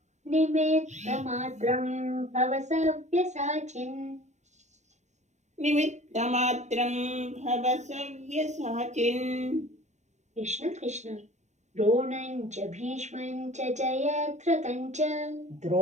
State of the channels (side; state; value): left; late; 0.34 ms